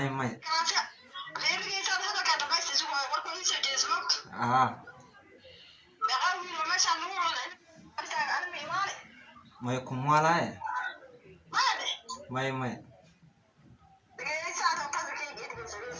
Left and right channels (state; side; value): identical; both; correlation 1.00